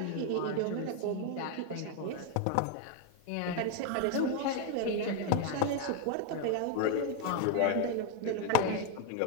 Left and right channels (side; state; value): both; different; correlation 0.01